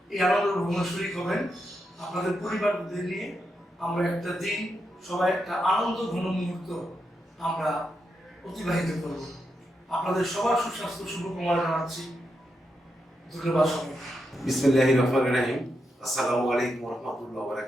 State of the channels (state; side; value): normal; both; correlation 0.85